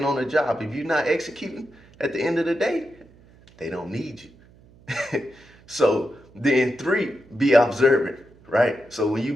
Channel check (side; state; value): right; noise; hum, 26 dB below the sound